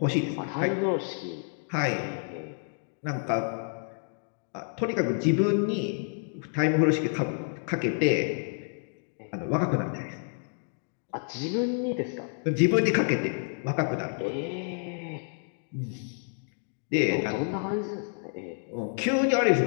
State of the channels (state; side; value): silent; right; 59 dB below the other